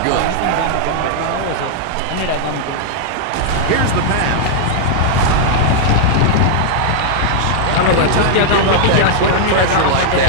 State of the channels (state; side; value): different; both; correlation -0.01